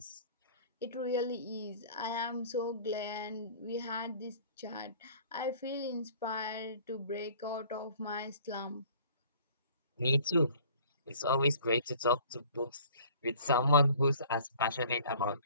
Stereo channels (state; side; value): inverted; both; correlation -0.51